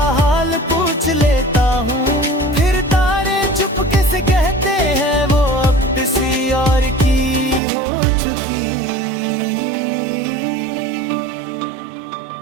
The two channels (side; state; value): left; drops out; at 7.6 s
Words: हाल पूछ लेता हूँ, फिर तारे चुपके से कहते हैं वो अब किसी और की हो चुकी।